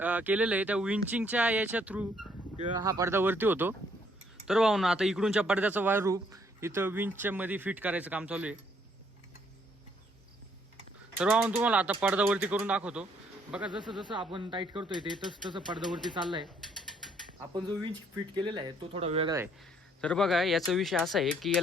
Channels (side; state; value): both; normal; correlation 0.67